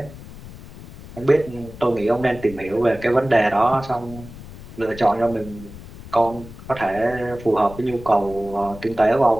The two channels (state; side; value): noise; left; rumble, 16 dB below the sound